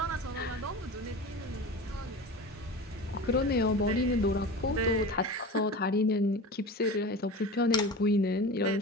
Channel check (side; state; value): both; normal; correlation 0.32